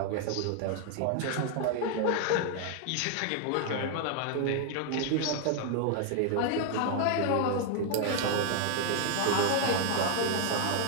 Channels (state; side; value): different; both; correlation 0.00